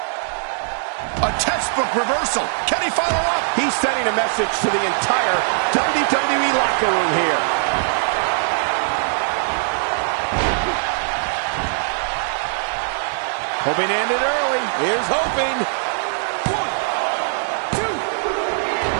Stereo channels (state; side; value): silent; left; digital silence